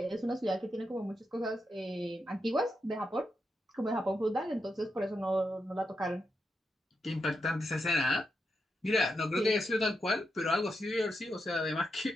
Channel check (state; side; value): normal; both; correlation 0.85